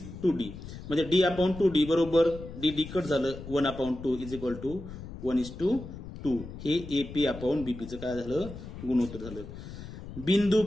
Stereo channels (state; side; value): noise; left; rumble, 12 dB below the sound